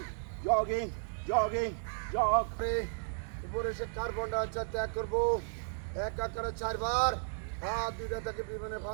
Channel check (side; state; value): left; silent; digital silence